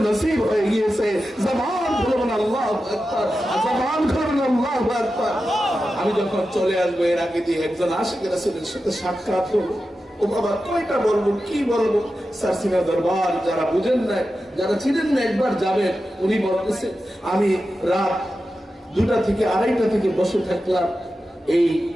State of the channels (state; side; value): normal; both; correlation 0.91